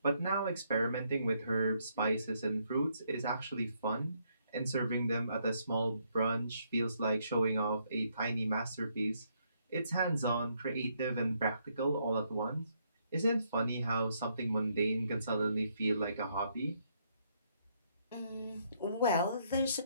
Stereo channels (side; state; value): both; inverted; correlation -0.73